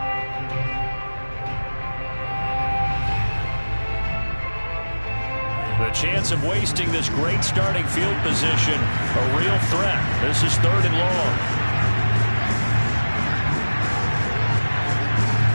The chance of wasting this great starting field position, a real threat. This is 3rd and long.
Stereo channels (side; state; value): both; inverted; correlation -1.00